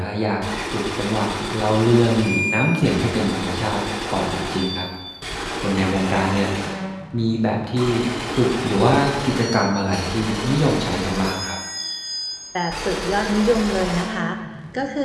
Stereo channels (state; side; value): identical; both; correlation 1.00